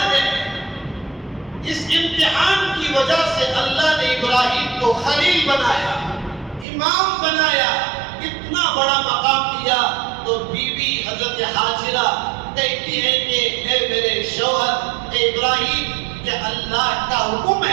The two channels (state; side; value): drops out; left; at 6.7 s